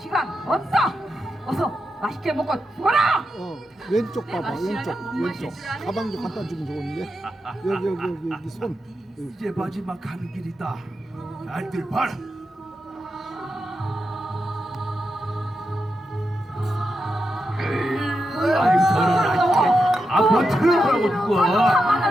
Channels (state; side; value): normal; both; correlation 0.87